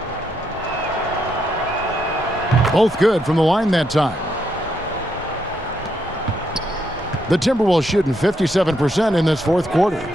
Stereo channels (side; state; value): both; normal; correlation 0.78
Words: Both good from the line that time. The Timberwolves shooting 57% in this fourth quarter.